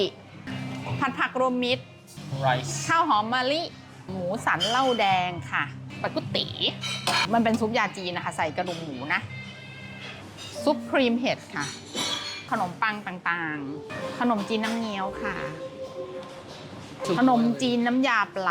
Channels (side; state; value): both; identical; correlation 1.00